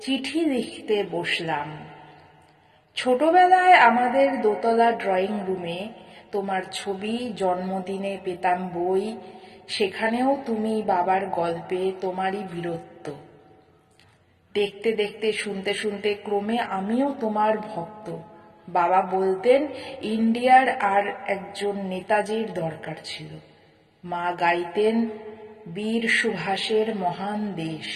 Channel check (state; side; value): identical; both; correlation 1.00